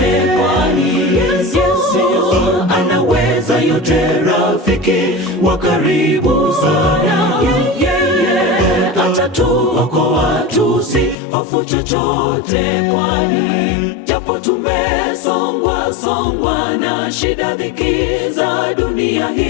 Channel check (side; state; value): right; drops out; at 11.2 s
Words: kwani Yesu anaweza yote, rafiki wa karibu sana. Yeye atatuokoa, tusihofu chochote, kwani japo tumesongwa na shida, dhiki za dunia